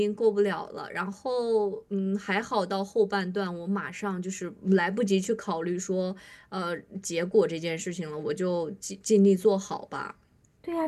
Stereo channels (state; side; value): identical; both; correlation 1.00